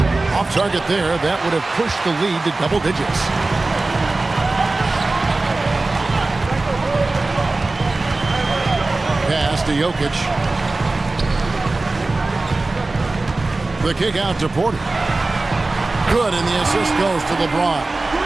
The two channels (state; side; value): quieter; left; 3.2 dB